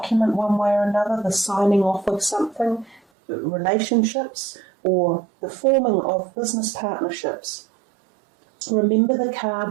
one way or another, the signing off of something, relationships, or the forming of business partnerships. Remember the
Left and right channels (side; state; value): left; drops out; at 3.0 s